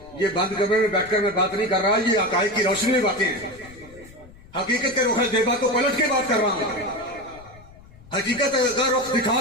یہ بند کمرے میں بیٹھ کر میں بات نہیں کر رہا، یہ حقائق کی روشنی میں باتیں ہیں. حقیقت کے رخ زیبا کو پلٹ کے بات کر رہا ہوں، حقیقت کا رخ دکھا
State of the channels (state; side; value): noise; left; rumble, 22 dB below the sound